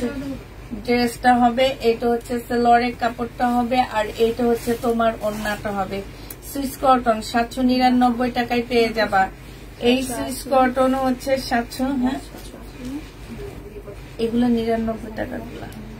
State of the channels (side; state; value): both; identical; correlation 1.00